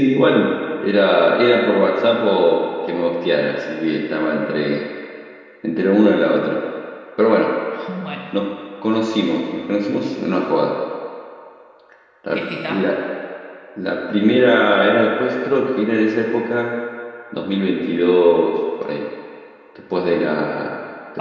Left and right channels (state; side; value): identical; both; correlation 1.00